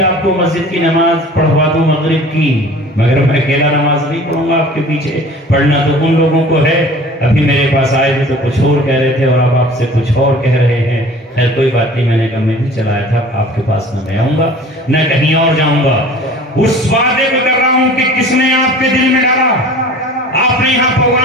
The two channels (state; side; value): normal; both; correlation 0.44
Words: آپ کو مسجد کی نماز پڑھوا دوں مغرب کی، مگر میں اکیلا نماز نہیں پڑھوں گا آپ کے پیچھے، پڑھنا تو ان لوگوں کو ہے۔ ابھی میرے پاس آئے تھے تو کچھ اور کہہ رہے تھے اور اب آپ سے کچھ اور کہہ رہے ہیں۔ خیر کوئی بات نہیں، میں نے کہا میں بھی چلایا تھا، آپ کے پاس نہ میں آؤں گا نہ کہیں اور جاؤں گا۔ اس وعدے کو کر رہا ہوں کہ کس نے آپ کے دل میں ڈالا، آپ نے یہاں